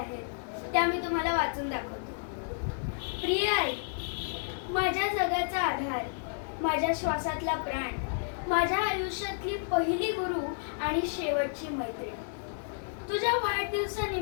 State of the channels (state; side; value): silent; right; digital silence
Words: त्या मी तुम्हाला वाचून दाखवतो. प्रिय आई, माझ्या जगाचा आधार, माझ्या श्वासातला प्राण, माझ्या आयुष्यातली पहिली गुरु आणि शेवटची मैत्रीण. तुझ्या